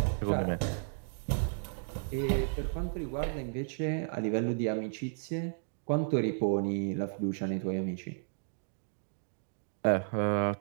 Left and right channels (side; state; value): left; silent; digital silence